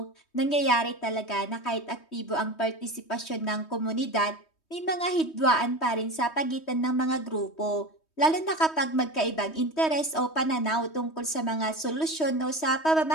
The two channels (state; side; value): late; right; 3.2 ms